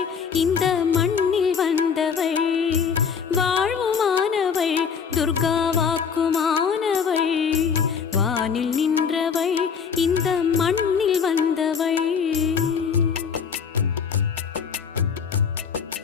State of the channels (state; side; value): quieter; right; 6.5 dB